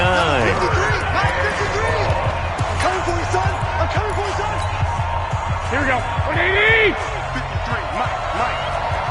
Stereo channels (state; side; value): identical; both; correlation 1.00